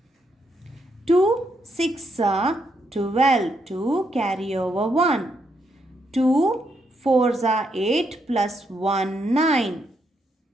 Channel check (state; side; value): normal; both; correlation 0.78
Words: 2 6 are 12. 2 carry over 1. 2 4s are 8 plus 1 9.